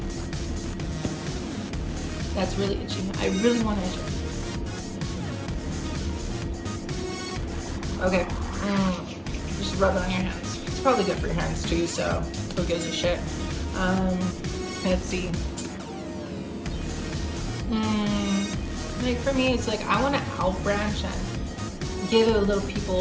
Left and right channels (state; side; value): identical; both; correlation 1.00